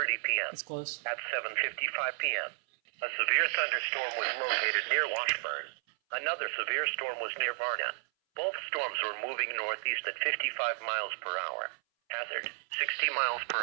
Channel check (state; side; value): silent; left; 56 dB below the other